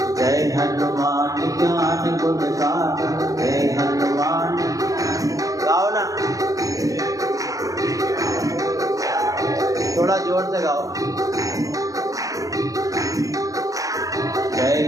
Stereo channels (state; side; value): late; left; 0.17 ms